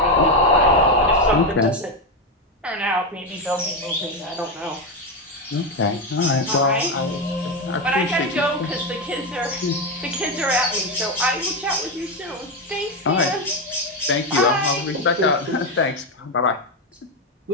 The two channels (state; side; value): normal; both; correlation 0.10